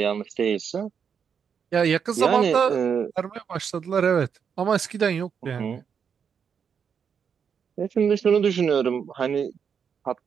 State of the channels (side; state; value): left; quieter; 7.0 dB